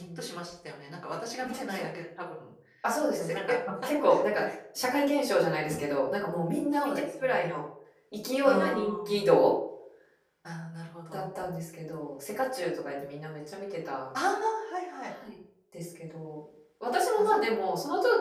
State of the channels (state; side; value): identical; both; correlation 1.00